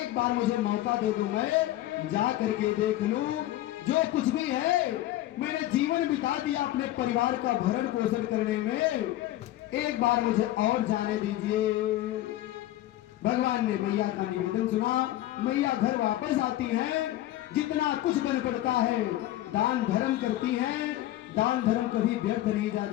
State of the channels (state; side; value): quieter; right; 14.7 dB